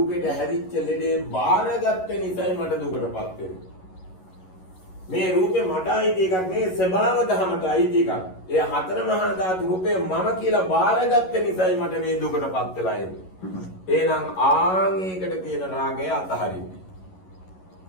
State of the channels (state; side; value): late; right; 11 ms